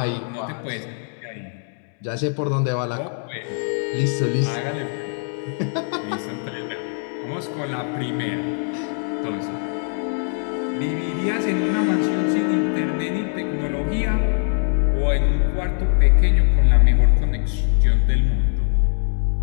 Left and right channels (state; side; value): silent; right; 62 dB below the other